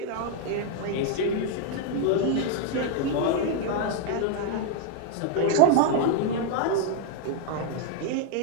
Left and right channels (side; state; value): both; different; correlation 0.00